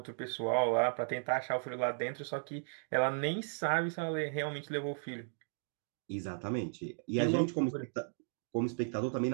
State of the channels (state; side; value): silent; left; digital silence